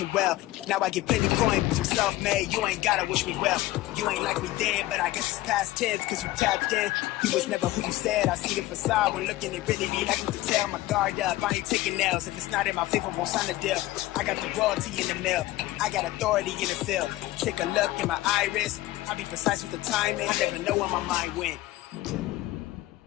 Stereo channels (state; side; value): quieter; right; 16.9 dB